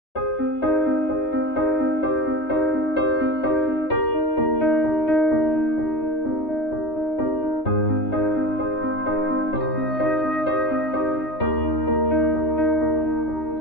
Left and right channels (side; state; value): right; late; 3.2 ms